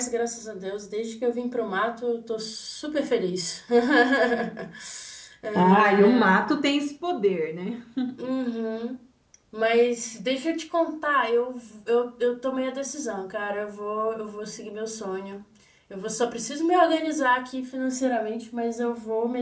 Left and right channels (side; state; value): both; identical; correlation 1.00